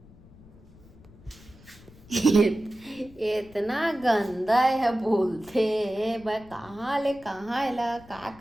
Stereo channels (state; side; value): noise; left; rumble, 23 dB below the sound